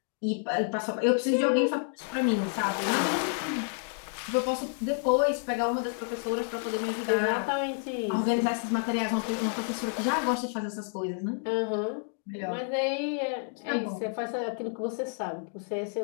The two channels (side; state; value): right; silent; 58 dB below the other